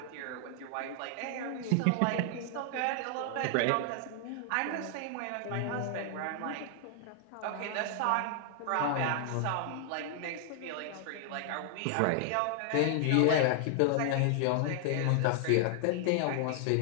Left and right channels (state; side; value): different; both; correlation 0.00